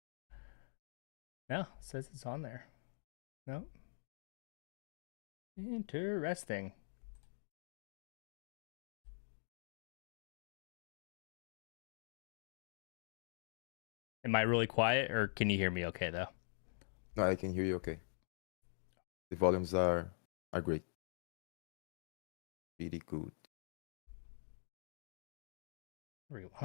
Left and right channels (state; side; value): silent; right; digital silence